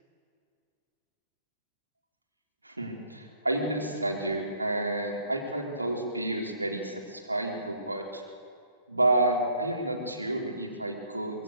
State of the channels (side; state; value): both; inverted; correlation -0.62